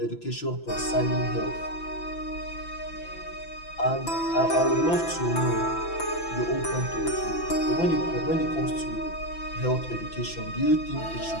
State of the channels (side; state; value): right; late; 5.9 ms